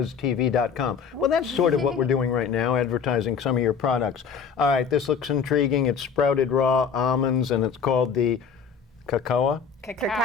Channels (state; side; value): quieter; right; 6.4 dB